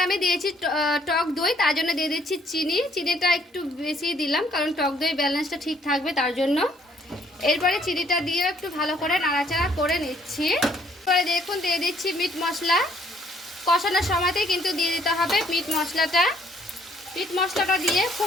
আমি দিয়েছি টক দই তার জন্য দিয়ে দিচ্ছি চিনিটা একটু বেশি দিলাম, কারণ টক দই ব্যালেন্সটা ঠিক থাকবে তার জন্য। এরপরে চিনিটা দিয়ে একটু ভালো করে নাড়াচাড়া করে নিচ্ছি। এরপরে দেখুন দিয়ে দিচ্ছি মিট মশলা। কষানোর সময়তেই কিন্তু দিয়ে দিতে হবে মিট মশলাটা দিয়ে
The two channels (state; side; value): normal; both; correlation 0.64